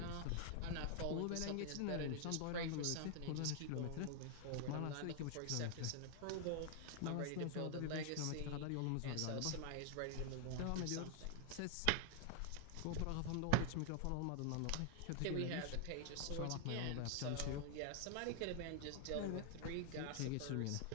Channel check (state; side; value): different; both; correlation 0.00